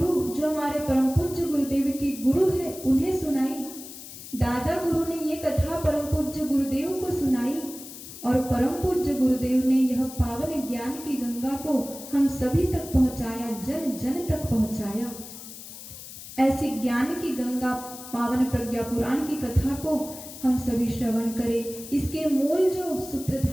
जो हमारे परम पूज्य गुरुदेव के गुरु है, उन्हें सुनाई। दादा गुरु ने ये कथा परम पूज्य गुरुदेव को सुनाई, और परम पूज्य गुरुदेव ने यह पावन ज्ञान की गंगा को हम सभी तक पहुंचाया, जन जन तक पहुंचाया। ऐसी ज्ञान की गंगा पावन प्रज्ञा पुराण की कथा को हम सभी श्रवण करें। इसके मूल जो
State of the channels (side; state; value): left; noise; hiss, 13 dB below the sound